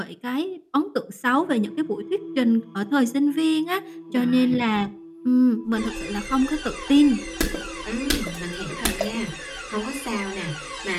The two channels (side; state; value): both; identical; correlation 1.00